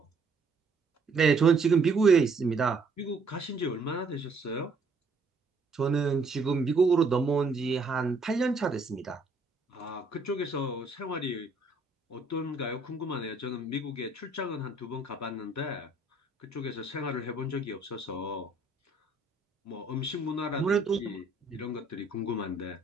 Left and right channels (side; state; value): left; quieter; 3.4 dB